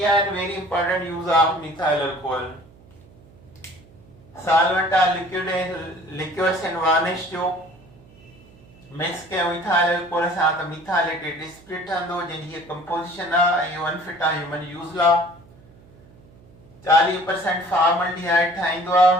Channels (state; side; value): noise; right; hum, 25 dB below the sound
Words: are very important use of methyl alcohol solvent liquors and varnish जो मिक्स कयो इथाइल अल्कोहल सां त मिथाइलेटेड स्पिरिट ठहंदो जंहिंजी कंपोजिशन आहे ऐं इहो अनफिट आहे ह्यूमन यूज़ लाइ 40% फॉर्मल्डिहाइड ठाहींदो